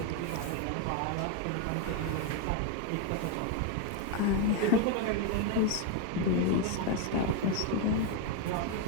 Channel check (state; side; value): different; both; correlation 0.01